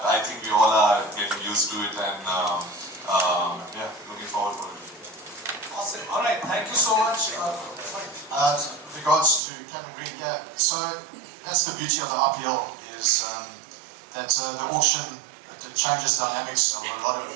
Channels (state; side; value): drops out; left; at 9.4 s